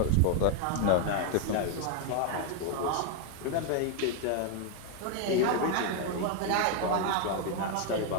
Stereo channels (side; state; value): both; different; correlation 0.00